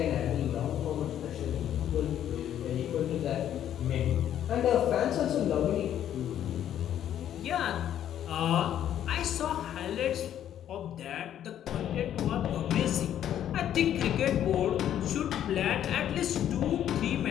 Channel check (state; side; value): quieter; right; 10.7 dB